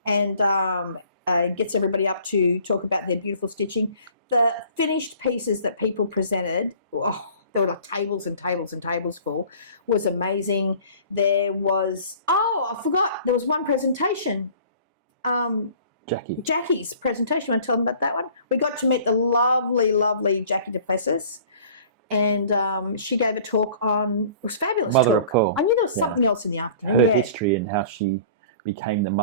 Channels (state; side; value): inverted; both; correlation -0.49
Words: and gets everybody up to talk about their beautiful stitching. The finished pieces that people presented, there were like tables and tables and tables full, was amazing. There was, I forgot, there was one presentation. Jackie's presentation. You want to tell them about that one? We got to meet the lovely, lovely Jackie Duplessis, and she gave a talk on, it was fabulous Mother talk. Of Pearl. I knew there was something else in the afternoon. Her history and how she became the